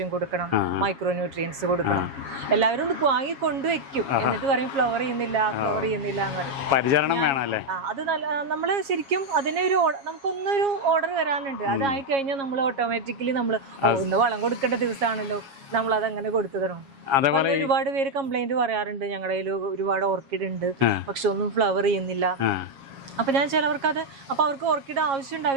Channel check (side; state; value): left; late; 7.3 ms